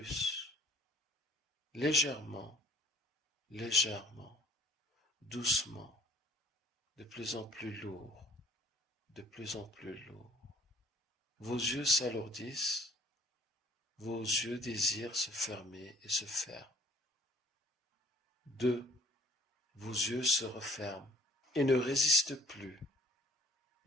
légèrement, légèrement, doucement, de plus en plus lourd, de plus en plus lourd. Vos yeux s'alourdissent, vos yeux désirent se fermer et se ferment. 2. Vos yeux se referment et ne résistent plus,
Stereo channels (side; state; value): both; normal; correlation 0.55